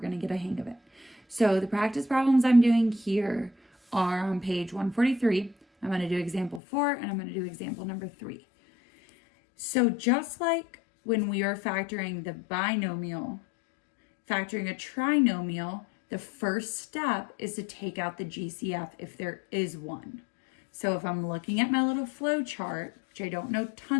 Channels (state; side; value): drops out; right; at 6.6 s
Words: to get a hang of it. So the practice problems I'm doing here are on page 143. I'm going to do example 4 and I'm going to do example number 3. So just like when we are factoring the binomial, factoring a trinomial, the first step is to take out the GCF if there is one. So if I'm looking at my little flow chart, which I don't know